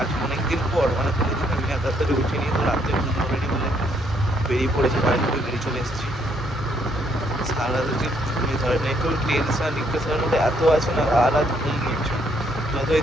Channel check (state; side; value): normal; both; correlation 0.70